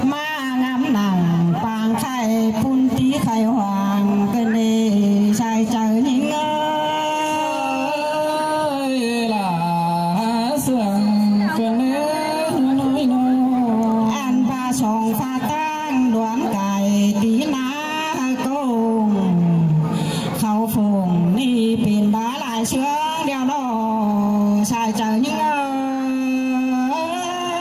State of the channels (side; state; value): both; identical; correlation 1.00